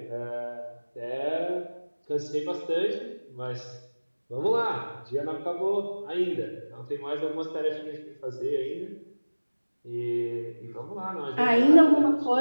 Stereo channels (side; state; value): both; inverted; correlation -1.00